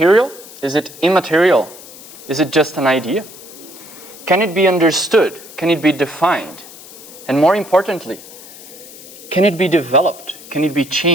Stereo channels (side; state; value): left; noise; hiss, 17 dB below the sound